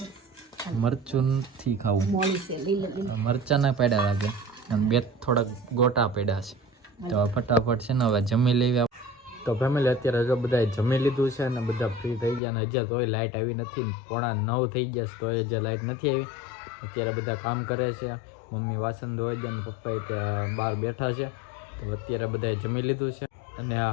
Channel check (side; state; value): right; drops out; at 12.4 s